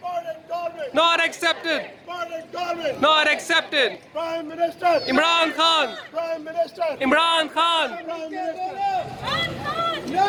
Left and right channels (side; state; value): both; identical; correlation 1.00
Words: Not accepted. Not accepted. Prime Minister. Imran Khan. Prime Minister. Imran Khan. Prime Minister.